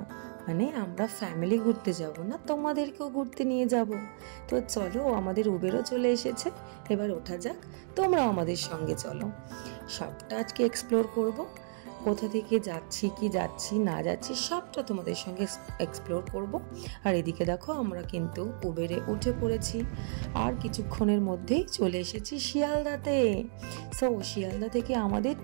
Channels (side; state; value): left; silent; digital silence